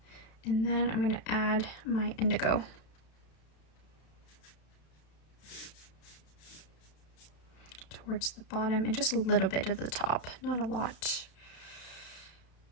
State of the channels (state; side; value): late; right; 32 ms